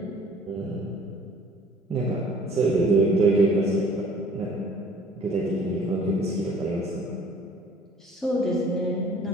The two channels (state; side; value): normal; both; correlation 0.52